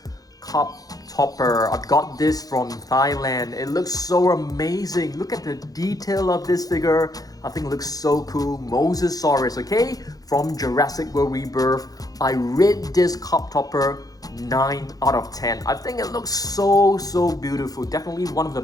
cup topper. I got this from Thailand. It looks so amazing. Look at the detail of this figure. I think it looks so cool. Mosasaurus, okay, from Jurassic World Rebirth. I rate this cup topper 9 out of 10. I think it looks so beautiful. Definitely one of the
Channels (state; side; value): late; right; 0.18 ms